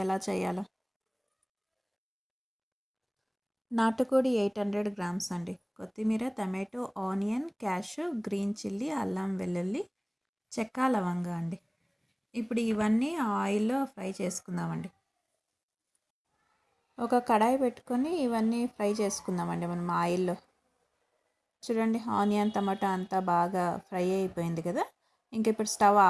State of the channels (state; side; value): identical; both; correlation 1.00